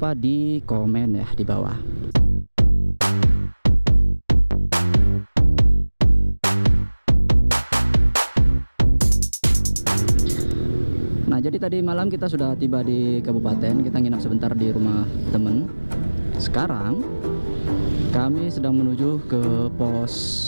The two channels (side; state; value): both; inverted; correlation -1.00